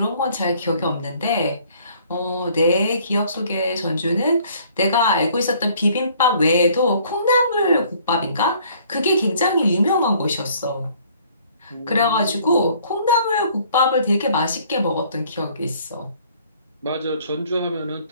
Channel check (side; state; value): both; inverted; correlation -0.58